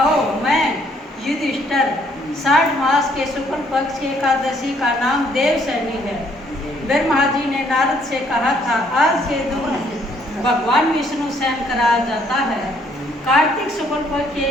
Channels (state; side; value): normal; both; correlation 0.66